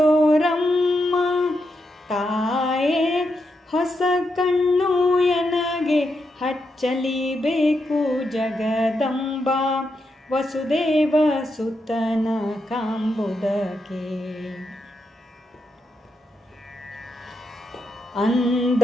ತಾಯೇ, ಹೊಸ ಕಣ್ಣು ಎನಗೆ ಹಚ್ಚಲಿಬೇಕು ಜಗದಂಬ, ವಸುದೇವ ಸುತನ ಕಾಂಬುದಕ್ಕೆ. ಅಂದ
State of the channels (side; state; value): both; normal; correlation 0.84